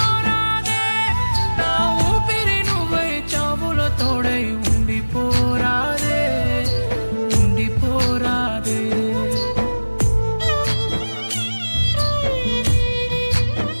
నా ఊపిరి నువ్వై చావులో తోడై ఉండిపోరాదే, ఉండిపోరాదే.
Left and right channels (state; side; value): inverted; both; correlation -1.00